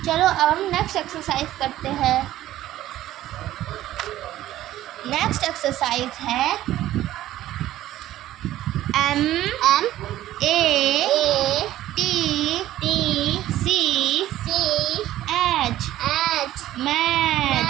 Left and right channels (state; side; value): quieter; left; 14.0 dB